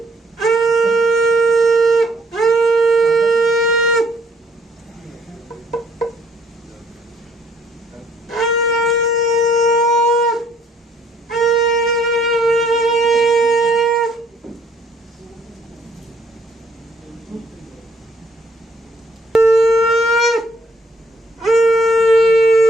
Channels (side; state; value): both; normal; correlation 0.65